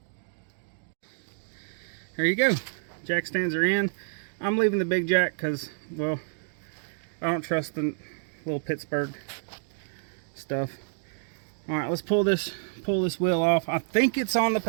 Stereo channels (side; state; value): left; silent; digital silence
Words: There you go. Jack stands are in. I'm leaving the big jack because, well, I don't trust the little Pittsburgh stuff. All right, let's pull this wheel off. I think it's on the